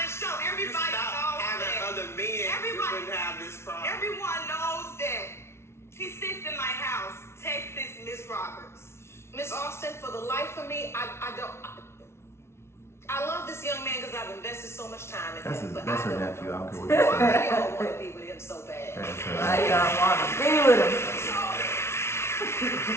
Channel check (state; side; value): late; right; 0.13 ms